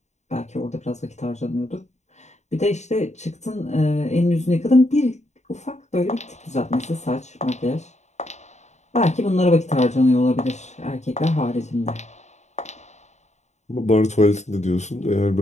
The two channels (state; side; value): late; right; 0.33 ms